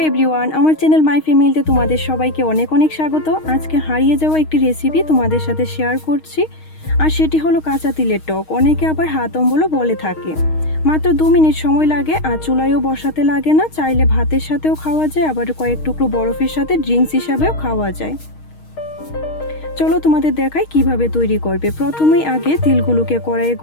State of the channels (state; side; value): late; right; 6.4 ms